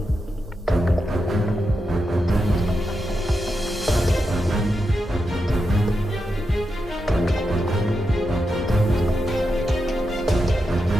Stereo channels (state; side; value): normal; both; correlation 0.87